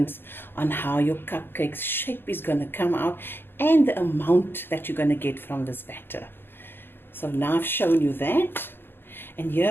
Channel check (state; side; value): late; right; 0.10 ms